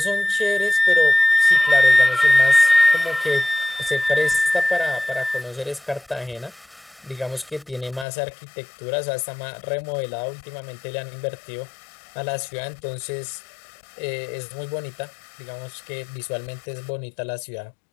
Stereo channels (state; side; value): drops out; right; at 8.1 s